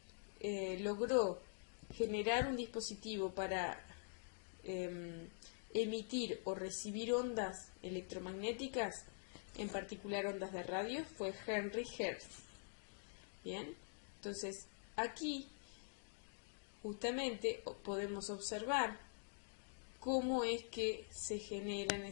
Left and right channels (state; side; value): silent; right; digital silence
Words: logró generar un dispositivo para emitir o recibir ondas electromagnéticas, en particular ondas de radio, fue Henry Hertz. Bien, entonces aquí justamente podemos observar cómo es que se generan